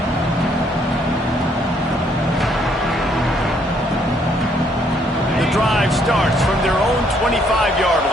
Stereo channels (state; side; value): normal; both; correlation 0.68